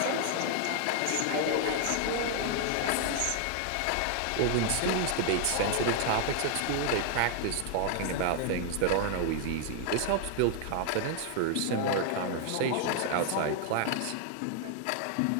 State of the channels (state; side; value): different; both; correlation 0.00